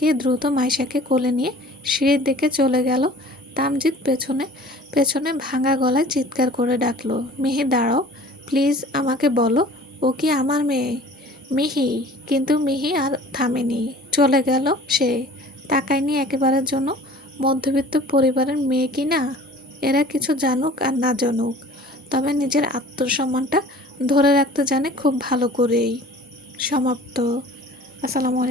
দ্রুত মাইশাকে কোলে নিয়ে সিঁড়ির দিকে চলে গেল। তামজিৎ পেছনে পেছনে ভাঙা গলায় চিৎকার করে ডাকলো, মিহি দাঁড়াও, প্লিজ আমাকে বলো, ও কি আমার মেয়ে? মিহি। কিন্তু মিহি আর থামেনি, চলে গেল সে। তাকায়নি একেবারের জন্য। মধ্যবিত্ত পরিবারের মেয়ে কি না? এরা কিছু জানুক আর না জানুক, তবে নিজের আত্মসম্মানটা ধরে রাখতে জানে খুব ভালো করেই। সমাপ্ত। আসসালামু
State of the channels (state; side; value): normal; both; correlation 0.46